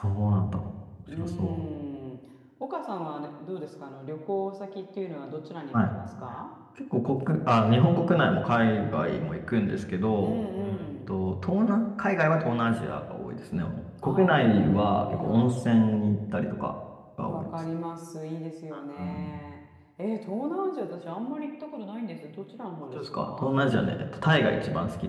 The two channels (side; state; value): both; identical; correlation 1.00